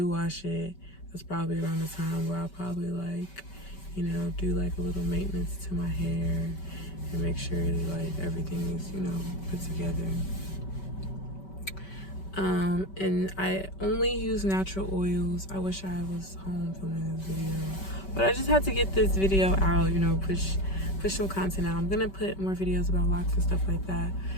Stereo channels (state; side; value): late; right; 5.2 ms